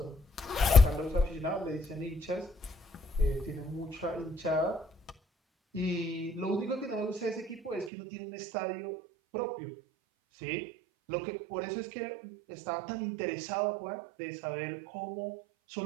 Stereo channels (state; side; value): drops out; left; at 7.9 s